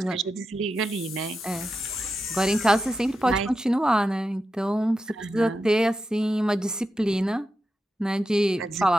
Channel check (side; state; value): both; normal; correlation 0.89